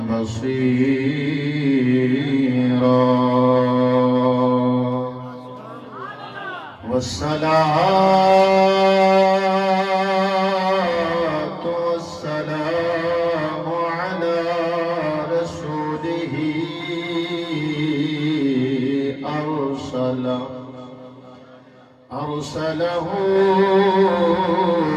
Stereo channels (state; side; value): identical; both; correlation 1.00